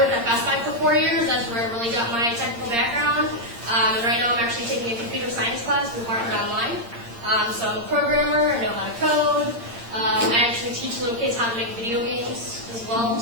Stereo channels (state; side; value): late; left; 8.7 ms